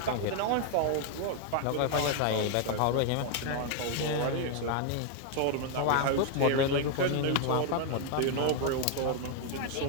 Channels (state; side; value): different; both; correlation 0.00